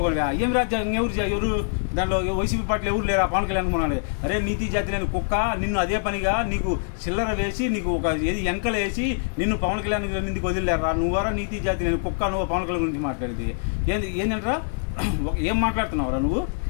ఏం రాజ్యం? ఎవరు దాంట్లో వైసీపీ పార్టీలు ఎవరు లేరా? పవన్ కళ్యాణ్ కొనాలి. అరే నీతి జాతి లేని కుక్క, నిన్ను అదే పనిగా నీకు చిల్లర వేసి, నీకు ఒక ఏది ఎంకలు వేసి నిన్ను పవన్ కళ్యాణ్ నిందికి వదిలేరా? నువ్వరా నీతి జాతి లేని కుక్క? నువ్వు పవన్ కళ్యాణ్ గురించి మాట్లాడేది ఏంటంటారా? ఏం మాట్లాడుతున్నావురా నువ్వు?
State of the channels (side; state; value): right; silent; 62 dB below the other